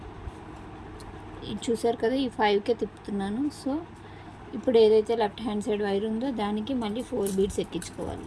చూసారు కదా, ఈ 5కే తిప్పుతున్నాను. సో ఇప్పుడు ఏదైతే లెఫ్ట్ హ్యాండ్ సైడ్ వైర్ ఉందో దానికి మళ్ళీ 4 బీడ్స్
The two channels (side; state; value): both; identical; correlation 1.00